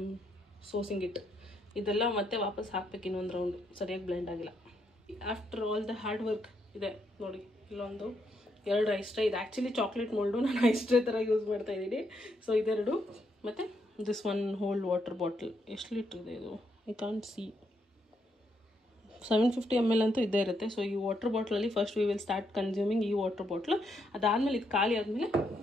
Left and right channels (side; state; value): both; normal; correlation 0.77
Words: ಸೋಸಿಂಗ್ ಇಟ್. ಇದೆಲ್ಲ ಮತ್ತೆ ವಾಪಸ್ ಹಾಕ್ಬೇಕು ಇನ್ನೊಂದು ರೌಂಡು. ಸರಿಯಾಗಿ ಬ್ಲೆಂಡ್ ಆಗಿಲ್ಲ. After all the hard work ಇದೆ ನೋಡಿ. ಇಲ್ಲೊಂದು 2 ಐಸ್ ಟ್ರೇ. ಇದು ಆ್ಯಕ್ಚುಲಿ ಚಾಕ್ಲೇಟ್ ಮೋಲ್ಡು, ನಾನು ಐಸ್ ಟ್ರೇ ಥರ ಯೂಸ್ ಮಾಡ್ತಾಯಿದ್ದೀನಿ. ಸೊ ಇದೆರಡು ಮತ್ತು ದಿಸ್ 1 ಹೋಲ್ ವಾಟರ್ ಬಾಟಲ್. ಎಷ್ಟು ಲೀಟ್ರ್ ಇದೆ ಇದು? I can't see. 750 ml ಅಂತೂ ಇದ್ದೇ ಇರುತ್ತೆ. ಸೊ ಈ ವಾಟರ್ ಬಾಟ್ಲಲ್ಲಿ first we will start consuming ಈ ವಾಟರ್ ಬಾಟ್ಲು. ಅದಾದಮೇಲೆ ಇದು ಖಾಲಿ ಆದಮೇಲೆ